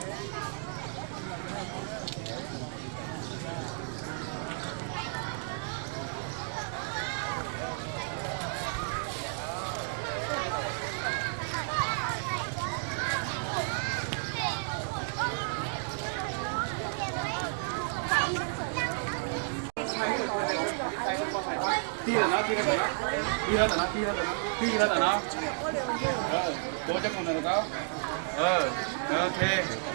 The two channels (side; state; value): left; silent; digital silence